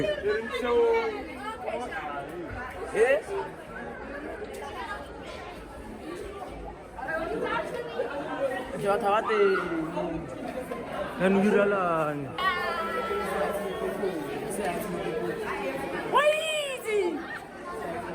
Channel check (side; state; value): both; identical; correlation 1.00